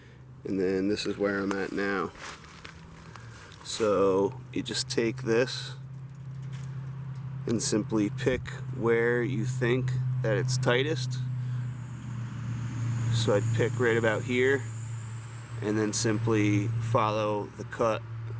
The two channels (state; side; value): identical; both; correlation 1.00